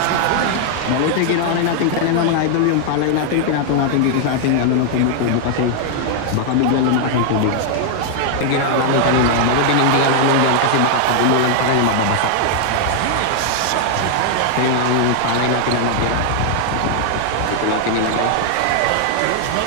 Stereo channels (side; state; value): both; different; correlation 0.00